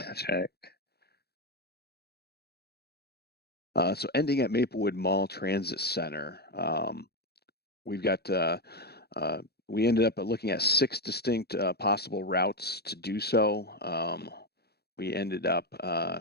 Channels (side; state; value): right; late; 0.47 ms